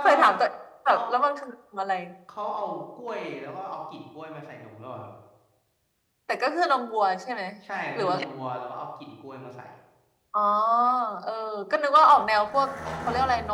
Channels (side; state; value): both; identical; correlation 1.00